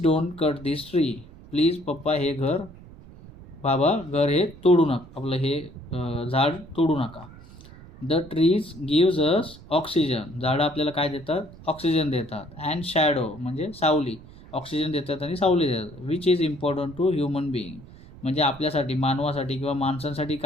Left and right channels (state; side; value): noise; right; rumble, 19 dB below the sound